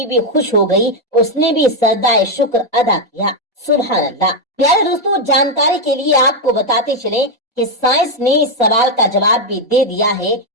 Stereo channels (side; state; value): both; normal; correlation 0.03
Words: भी खुश हो गई, उसने भी सजदाए शुक्र अदा किया। सुभान अल्लाह। प्यारे दोस्तों, जानकारी के लिए आपको बताते चले कि साइंस ने इस सवाल का जवाब भी दे दिया है।